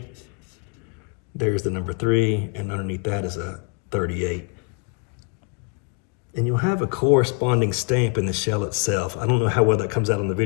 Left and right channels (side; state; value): right; quieter; 34.8 dB